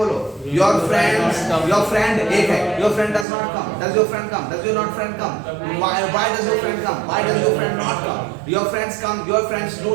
योर फ्रेंड एक है, your friend does not come, does your friend come, does your not friend come, why does your friend come, why does your friend not come, your friends come, your friends do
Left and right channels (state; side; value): drops out; left; at 3.2 s